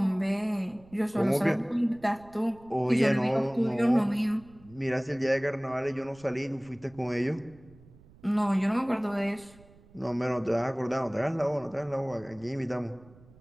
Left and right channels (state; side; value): noise; right; rumble, 25 dB below the sound